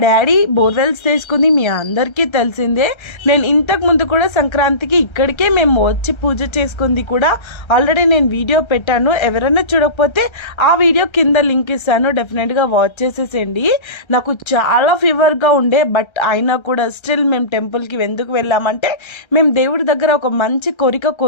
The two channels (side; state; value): right; late; 1.3 ms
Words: daddy borewells తీసుకుంది మీ అందరికీ తెలిసిందే. నేను ఇంతకు ముందు కూడా సంక్రాంతికి ఇక్కడికే మేము వచ్చి పూజ చేసుకుంది కూడా ఆల్రెడీ నేను వీడియో పెట్టాను. ఎవరైనా చూడకపోతే ఆ వీడియో కింద లింక్ ఇస్తాను, డెఫినెట్గా వాచ్ చేసేసేయండి. నాకు చాలా ఫీవర్గా ఉండే, బట్ అయినా కూడా స్టిల్ మేము టెంపుల్కి ఎందుకు వెళ్ళామంటే మేము దేవుడి దగ్గర ఒక మంచి కోరిక